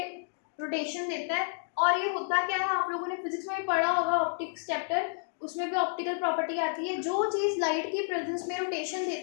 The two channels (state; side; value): silent; right; digital silence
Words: रोटेशन देता है। और ये होता क्या है, आप लोगों ने फिजिक्स में पढ़ा होगा ऑप्टिक्स चैप्टर, उसमें भी ऑप्टिकल प्रॉपर्टी आती है। जो चीज लाइट की प्रेजेंस में रोटेशन